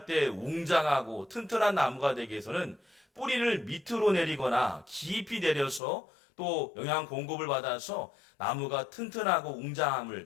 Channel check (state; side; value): drops out; right; at 5.8 s